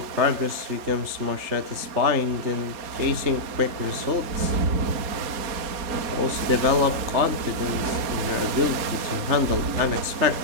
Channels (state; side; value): late; left; 4.2 ms